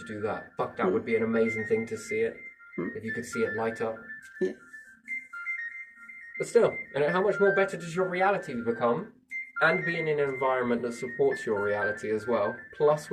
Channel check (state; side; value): identical; both; correlation 1.00